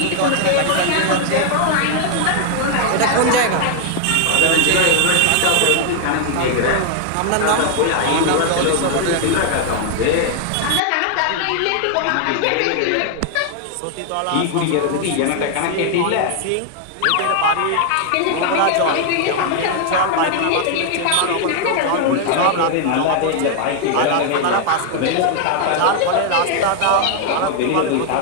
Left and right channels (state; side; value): different; both; correlation 0.00